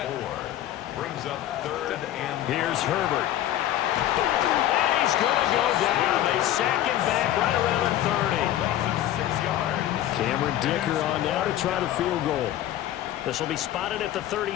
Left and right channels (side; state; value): right; quieter; 12.9 dB